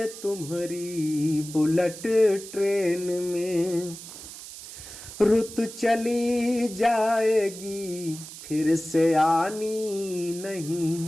तुम्हारी बुलेट ट्रेन में। रुत चली जाएगी फिर से आनी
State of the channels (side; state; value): right; noise; hiss, 13 dB below the sound